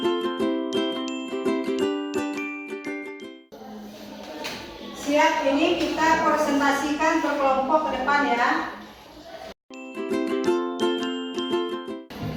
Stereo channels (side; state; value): both; identical; correlation 1.00